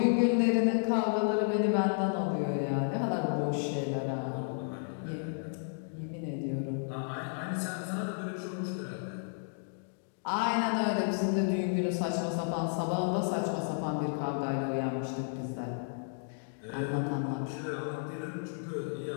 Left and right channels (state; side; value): silent; right; digital silence